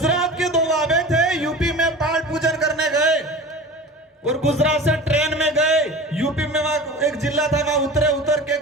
के दो बाबे थे, यूपी में पाठ पूजन करने गए और गुजरात से ट्रेन में गए। यूपी में वहां एक जिला था, वहां उतर के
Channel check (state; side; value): normal; both; correlation 0.35